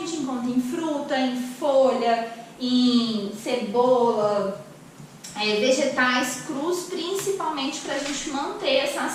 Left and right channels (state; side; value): identical; both; correlation 1.00